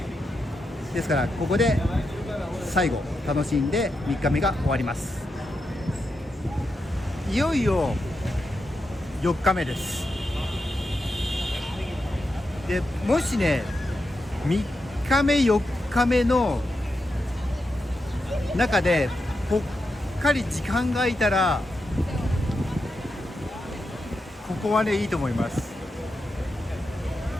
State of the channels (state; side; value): normal; both; correlation 0.86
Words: ですからここで最後楽しんで3日目が終わります。いよいよ4日目です。でもしね3日目4日目の中でぽっかり時間が空いたら、ここはねいいと思います。